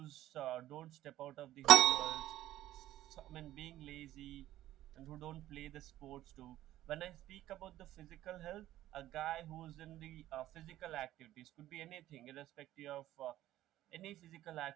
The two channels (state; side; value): quieter; left; 14.1 dB